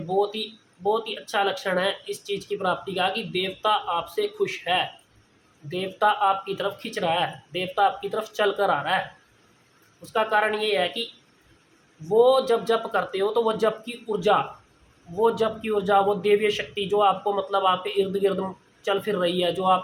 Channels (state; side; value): identical; both; correlation 1.00